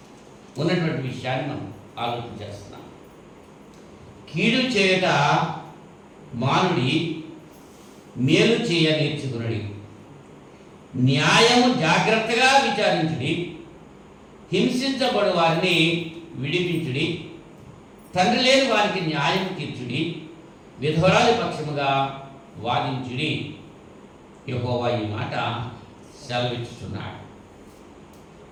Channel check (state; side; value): identical; both; correlation 1.00